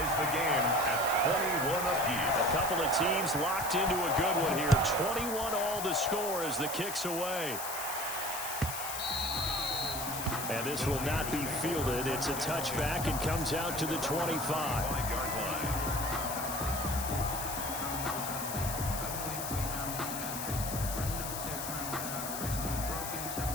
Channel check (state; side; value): noise; left; hiss, 6 dB below the sound